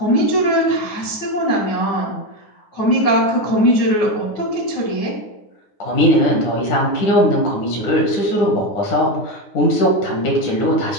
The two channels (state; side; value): late; right; 9.7 ms